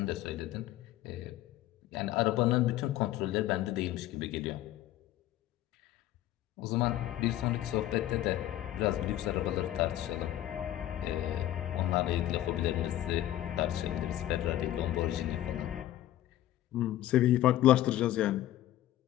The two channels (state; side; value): quieter; right; 13.7 dB